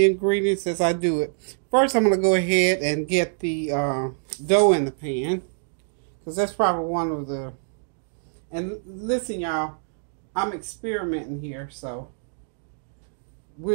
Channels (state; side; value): silent; left; digital silence